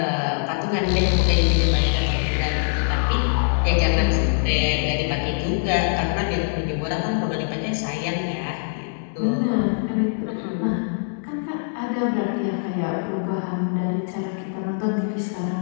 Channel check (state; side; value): silent; right; digital silence